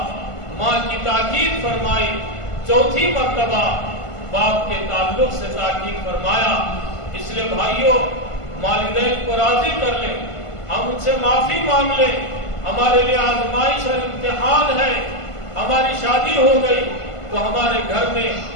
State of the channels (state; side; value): late; right; 1.5 ms